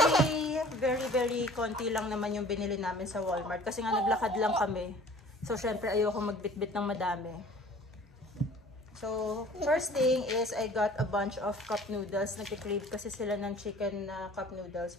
very konti lang naman yung binili namin sa Walmart. Kasi nga, naglakad lang kami. So, syempre, ayoko magbitbit ng madami. So, first thing is, I got a bunch of cup noodles. Nagkikrave kasi sila ng chicken na cup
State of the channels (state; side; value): normal; both; correlation 0.48